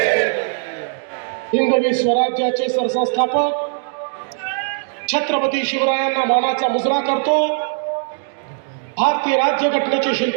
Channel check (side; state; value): left; silent; digital silence